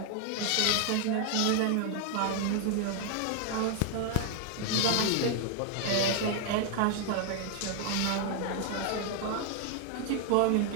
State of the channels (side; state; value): both; different; correlation 0.00